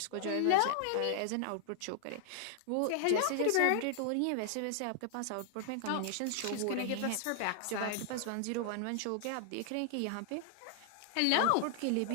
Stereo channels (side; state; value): both; different; correlation 0.00